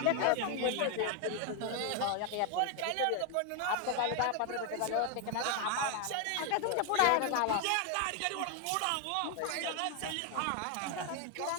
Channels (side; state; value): both; different; correlation 0.00